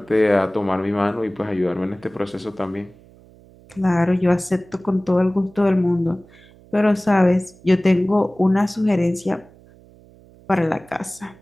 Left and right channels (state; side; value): noise; right; hum, 26 dB below the sound